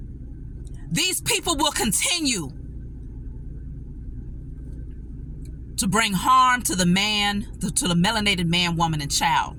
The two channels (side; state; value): both; identical; correlation 1.00